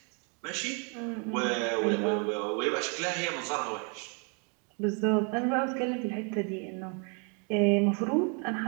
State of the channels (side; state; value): left; quieter; 36.7 dB